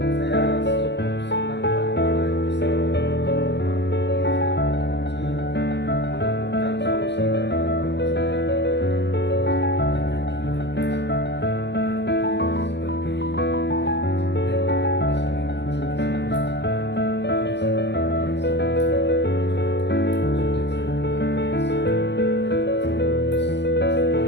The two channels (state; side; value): late; right; 0.51 ms